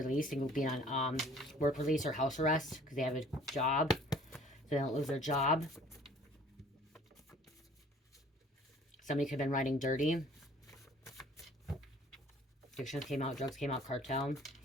and being on work release or house arrest because they have a job, so they don't lose their job. Somebody could have been riding dirty. Addictions came out, drugs came out, cartel.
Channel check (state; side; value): normal; both; correlation 0.53